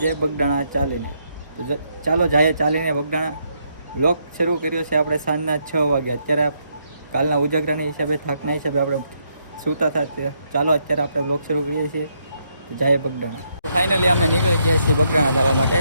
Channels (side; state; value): both; inverted; correlation -0.76